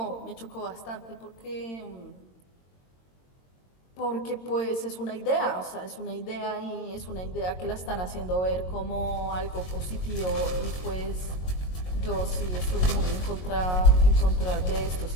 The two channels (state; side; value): late; right; 22 ms